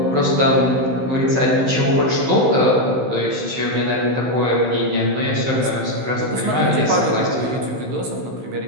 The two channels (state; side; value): late; left; 16 ms